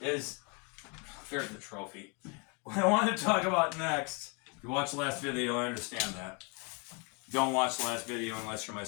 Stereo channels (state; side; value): quieter; right; 32.3 dB